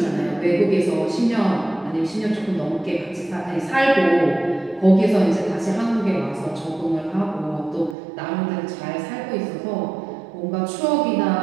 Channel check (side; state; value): left; drops out; at 8.0 s